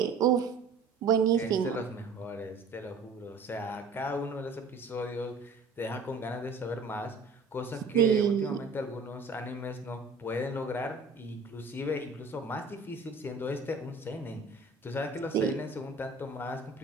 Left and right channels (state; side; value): quieter; left; 3.9 dB